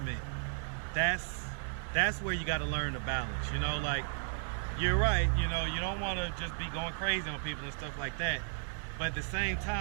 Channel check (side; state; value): left; silent; digital silence